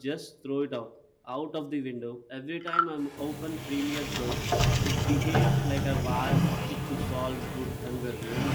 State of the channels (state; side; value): identical; both; correlation 1.00